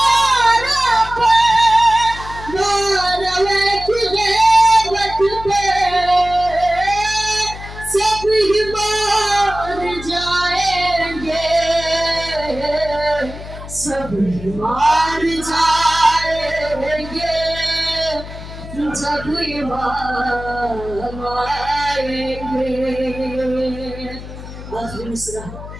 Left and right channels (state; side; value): noise; left; hum, 12 dB below the sound